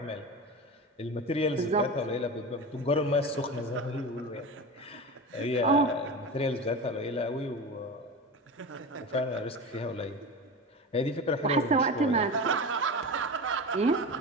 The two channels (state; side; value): normal; both; correlation 0.27